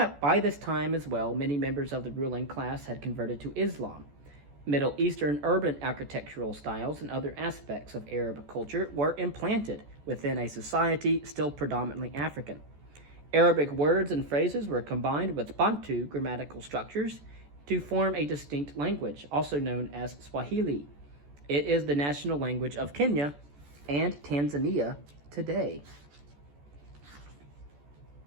By this time as well, many members of the ruling class had converted to Islam. Middle Eastern urban architectural styles and other aspects of Arab culture were implanted within a society still predominantly African. Arabic words and phrases were combined with Bantu grammatical structures to form a distinct language, also known as Swahili. It is the national language of Kenya and Tanzania today.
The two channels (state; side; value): late; left; 14 ms